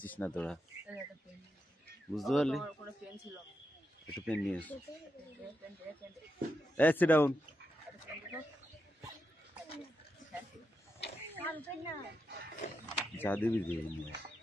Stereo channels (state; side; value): normal; both; correlation 0.86